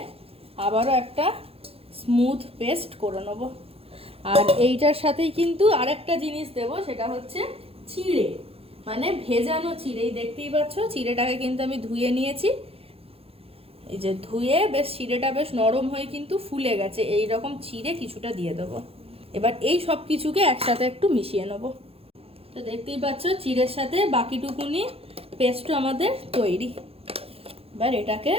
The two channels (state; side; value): late; left; 0.28 ms